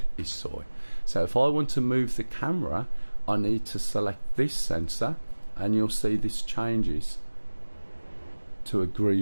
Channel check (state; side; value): inverted; both; correlation -1.00